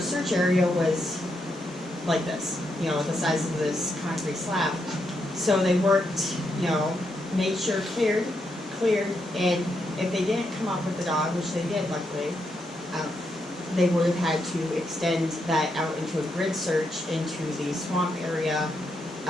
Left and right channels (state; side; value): normal; both; correlation 0.81